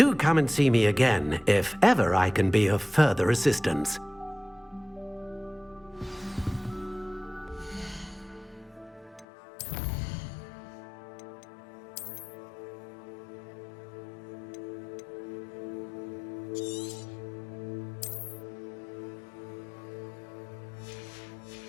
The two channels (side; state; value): right; drops out; at 9.2 s